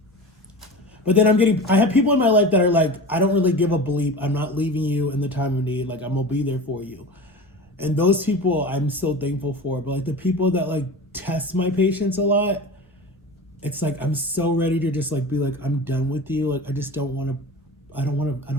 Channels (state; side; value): normal; both; correlation 0.32